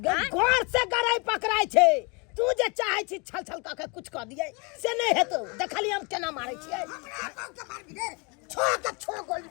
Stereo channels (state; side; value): quieter; right; 30.7 dB